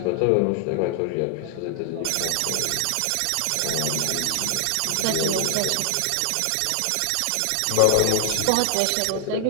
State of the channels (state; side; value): different; both; correlation 0.00